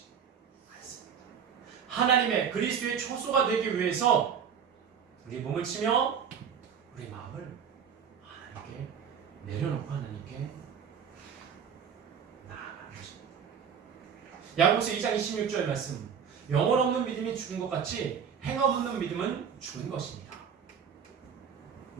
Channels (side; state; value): left; quieter; 7.4 dB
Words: 않습니다. 하나님의 그리스도의 처소가 되기 위해서 우리 몸을 치며 우리 마음을 하나님께 내려놓고 하나님께 나아가는 것입니다. 야고보서 2장 26절 말씀. 영혼 없는 믿음이 죽은 것 같이 행함 없는 믿음은 죽은 것입니다.